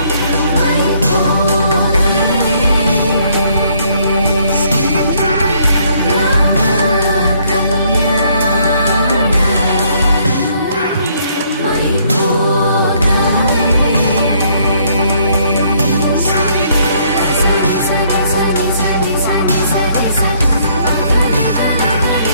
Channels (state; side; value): inverted; both; correlation -0.66